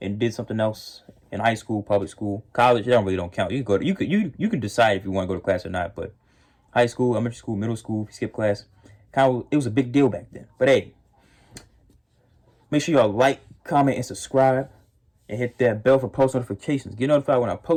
and did something else in high school, public school, college. It don't count. You can go. You can decide if you want to go to class or not. But high school, elementary school, middle school, if you skip class, it was a big deal back then. But hey, make sure y'all like, comment, and subscribe. And hit that bell for post notifications. Get notified when I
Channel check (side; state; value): both; identical; correlation 1.00